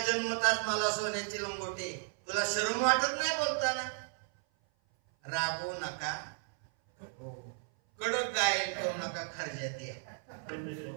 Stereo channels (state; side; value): silent; left; 55 dB below the other